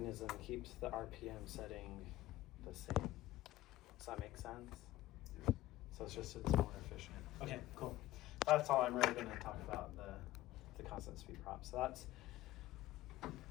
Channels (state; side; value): quieter; right; 15.4 dB